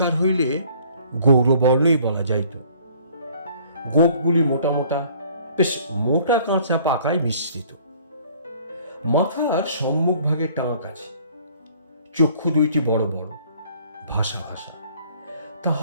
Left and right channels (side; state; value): both; inverted; correlation -0.56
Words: হইলে গৌরবর্ণই বলা যাইত। গোপগুলি মোটা মোটা, বেশ মোটা কাঁচা পাকায় মিশ্রিত। মাথার সম্মুখ ভাগে টাক আছে। চক্ষু দুইটি বড় বড়, ভাষা ভাষা।